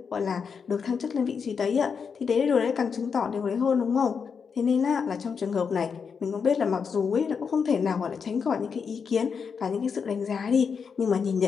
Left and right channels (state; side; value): quieter; right; 6.1 dB